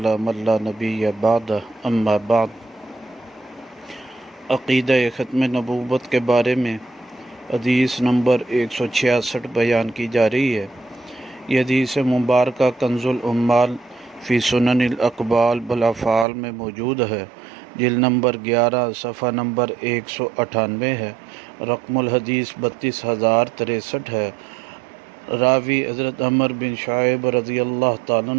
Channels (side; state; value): left; drops out; at 16.2 s